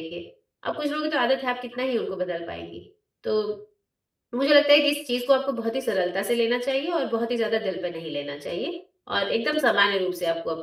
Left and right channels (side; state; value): both; identical; correlation 1.00